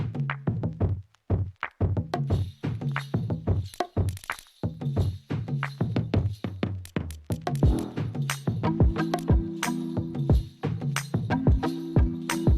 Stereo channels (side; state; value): both; identical; correlation 1.00